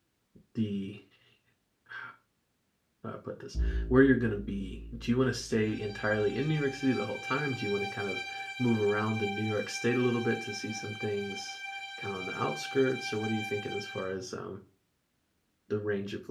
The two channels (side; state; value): both; identical; correlation 1.00